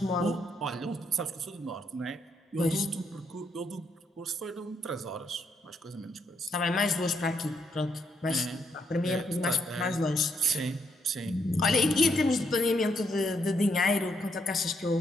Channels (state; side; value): normal; both; correlation 0.76